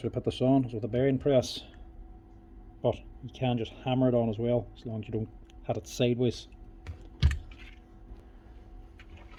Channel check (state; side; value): identical; both; correlation 1.00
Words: way to put this on is with a bearing press, but you can just hammer it on as well, as long as you don't have it sideways.